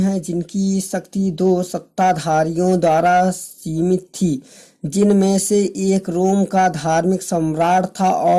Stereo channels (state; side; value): identical; both; correlation 1.00